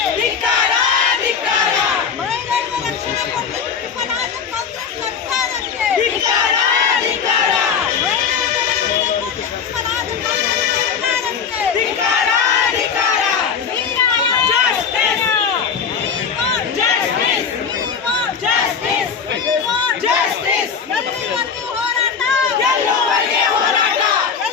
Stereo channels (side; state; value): right; quieter; 6.5 dB